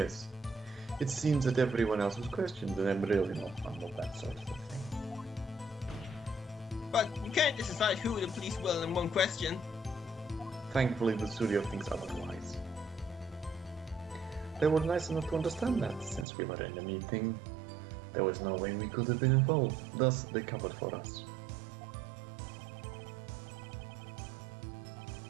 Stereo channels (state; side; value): drops out; left; at 16.2 s